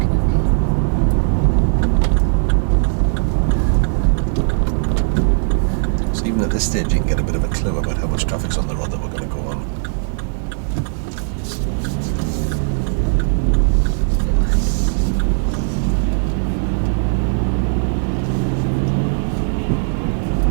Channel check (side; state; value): left; silent; digital silence